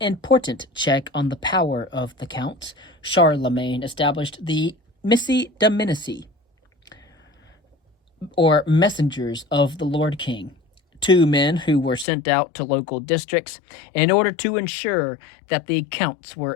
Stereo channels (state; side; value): drops out; right; at 12.1 s